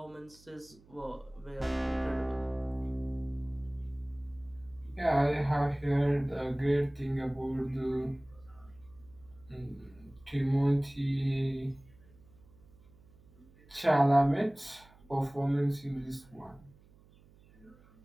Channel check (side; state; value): right; noise; hum, 26 dB below the sound